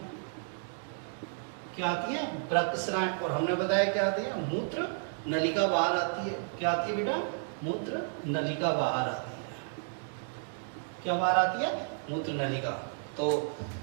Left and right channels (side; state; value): left; silent; digital silence